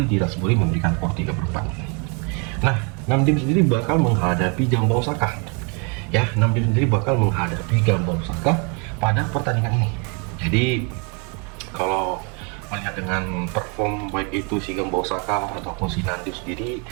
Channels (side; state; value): left; quieter; 34.8 dB